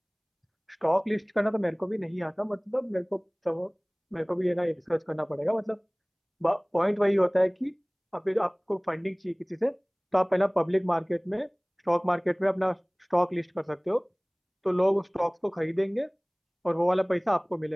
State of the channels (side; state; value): both; identical; correlation 1.00